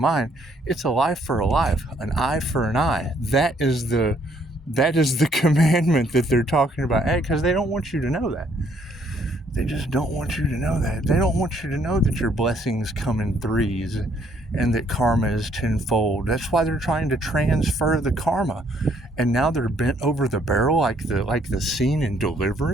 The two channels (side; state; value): both; normal; correlation 0.66